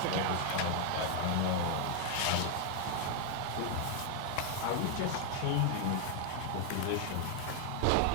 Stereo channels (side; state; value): both; different; correlation 0.00